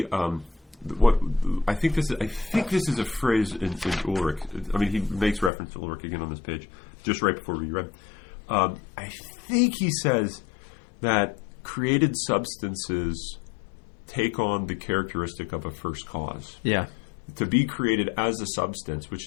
what I think this is a phrase in Ulrich. I mean, he makes reference to Ulrich again on this page, just right before we read. I think he says that created substances take on the characteristic of a first cause. Yeah. To be created as a substance, which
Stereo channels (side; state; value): right; drops out; at 5.5 s